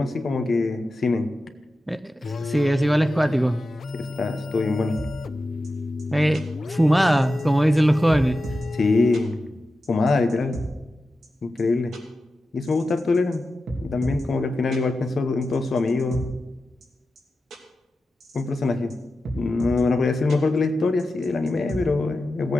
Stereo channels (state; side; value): normal; both; correlation 0.92